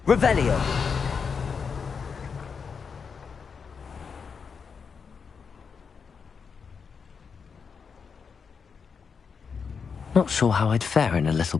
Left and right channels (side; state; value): right; quieter; 5.9 dB